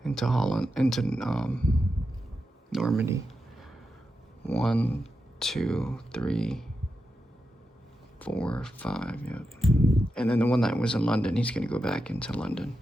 into Holland, into Normandy. 1, 2, 3, 4, 5. Yep. And then the one that was in London, he's gonna go back into London.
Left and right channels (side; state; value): both; normal; correlation 0.88